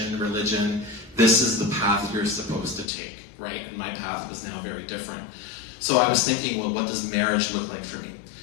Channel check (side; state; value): right; drops out; at 2.9 s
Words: religion. This is the path you're supposed to take, right? And my path was now very different. So I was thinking, well, what does marriage look like for me?